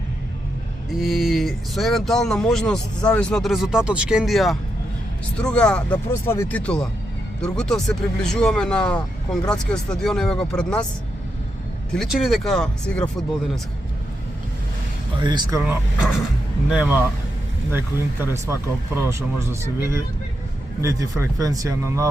И со евентуална можност, зависно од резултатот, Шкендија Струга да прослави титула. Дургутов се приближуваме на Конградскиот стадион, еве го пред нас. Ти личи ли дека се игра фудбал денеска? Искрено нема некој интерес вака прво што може да се види. Нити фреквенција на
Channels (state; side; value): normal; both; correlation 0.84